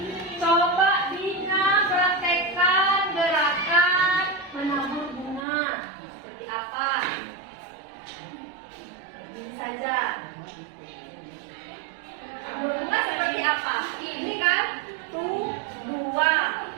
coba Dina praktekkan gerakan menabur bunga. Seperti apa? Ini saja. Menabur bunga seperti apa? Ini kan 1, 2,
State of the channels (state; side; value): drops out; left; at 5.5 s